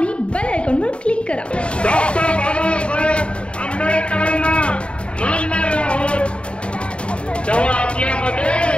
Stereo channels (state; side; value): late; right; 0.057 ms